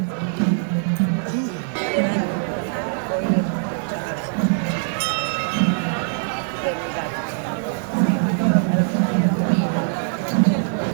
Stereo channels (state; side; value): silent; left; 64 dB below the other